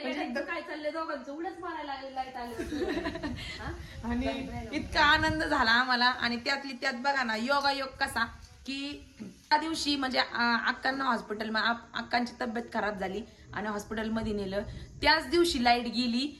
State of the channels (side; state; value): both; identical; correlation 1.00